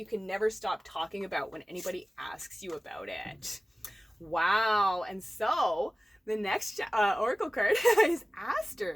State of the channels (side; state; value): both; normal; correlation 0.97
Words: can never stop talking about when anybody asks you about it. Wow. And so the next oracle card is